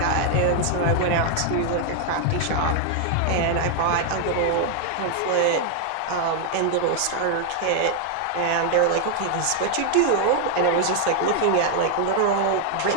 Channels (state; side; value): different; both; correlation 0.00